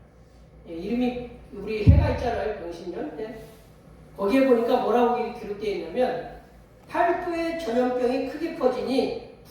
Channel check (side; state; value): both; identical; correlation 1.00